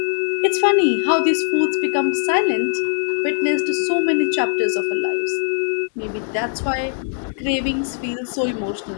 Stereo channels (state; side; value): silent; right; 65 dB below the other